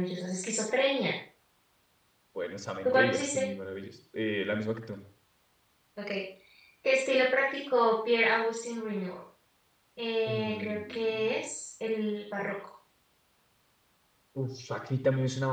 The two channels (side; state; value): both; identical; correlation 1.00